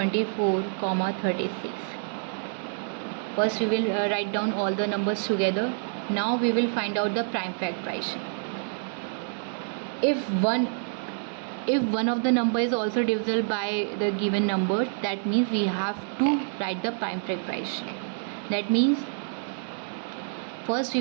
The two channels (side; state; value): left; silent; digital silence